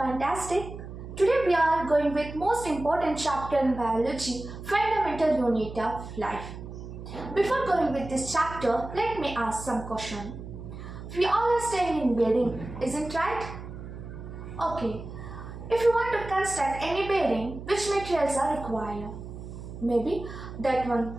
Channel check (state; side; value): noise; right; hum, 11 dB below the sound